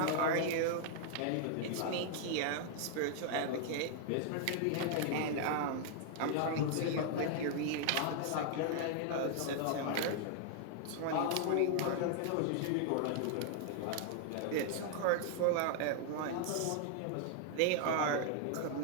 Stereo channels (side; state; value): both; different; correlation 0.00